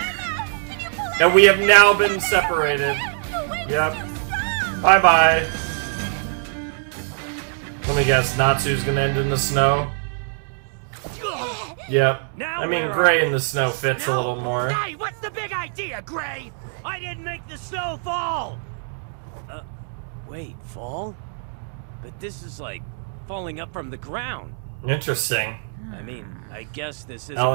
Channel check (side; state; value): left; silent; 63 dB below the other